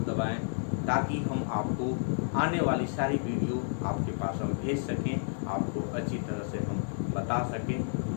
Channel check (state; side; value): silent; right; digital silence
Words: दबाएं, ताकि हम आपको आने वाली सारी वीडियो आपके पास हम भेज सकें, आपको अच्छी तरह से हम बता सकें।